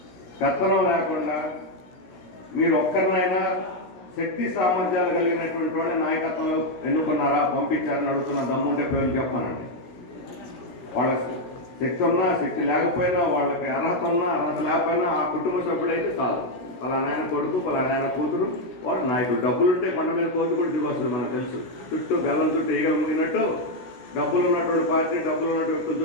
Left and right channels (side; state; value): right; late; 16 ms